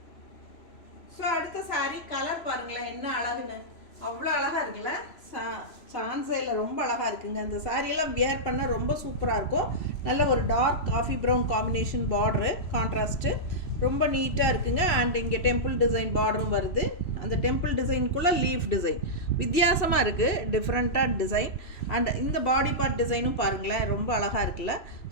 ஸோ அடுத்த saree கலர் பாருங்களேன் என்ன அழகுன்னு. அவ்வளோ அழகாக இருக்குல்ல. சான்ஸே இல்லை, ரொம்ப அழகாக இருக்குங்க. அந்த சாரியெல்லாம் வியர் பண்ண ரொம்ப சூப்பராக இருக்கும். நல்ல ஒரு dark coffee brown combination border, contrast ரொம்ப நீட்டாக இருக்குங்க. அண்ட் இங்கே டெம்பிள் டிசைன் பார்டரும் வருது. அந்த டெம்பிள் டிசைனுக்குள்ளே லீஃப் டிசைன் வித்தியாசமாக இருக்குது, டிஃப்ரெண்ட்டாக டிசைன். அண்ட் இந்த பாடி பார்ட் டிசைனும் பாருங்களேன் ரொம்ப அழகாக இருக்குல்ல.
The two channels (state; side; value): late; right; 3.0 ms